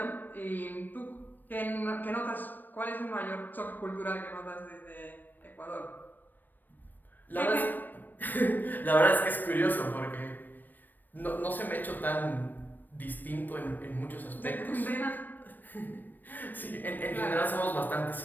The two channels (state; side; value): late; right; 0.090 ms